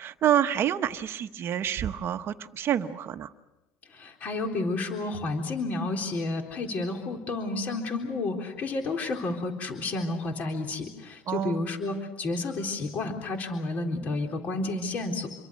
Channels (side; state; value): both; normal; correlation 0.49